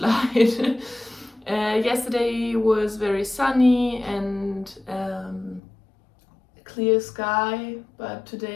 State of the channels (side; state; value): right; drops out; at 5.6 s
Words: Yesterday was very sunny and clear sky, but